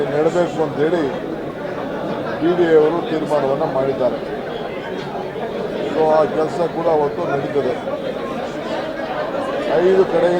ನೆಡಬೇಕು ಅಂತೇಳಿ BDA ಅವರು ತೀರ್ಮಾನವನ್ನು ಮಾಡಿದ್ದಾರೆ. ಸೊ ಆ ಕೆಲಸ ಕೂಡ ಅವತ್ತು ನಡೀತದೆ. 5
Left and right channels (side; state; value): both; identical; correlation 1.00